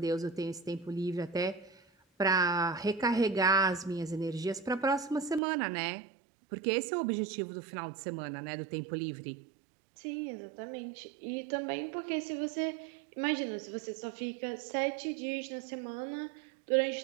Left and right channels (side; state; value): left; drops out; at 5.4 s